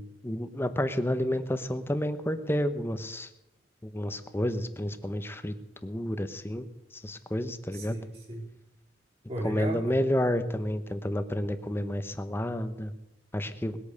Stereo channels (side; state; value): both; normal; correlation 0.87